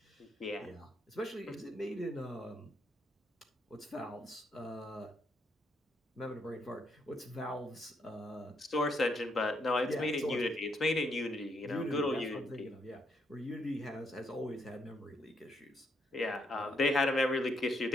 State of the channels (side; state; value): both; normal; correlation 0.75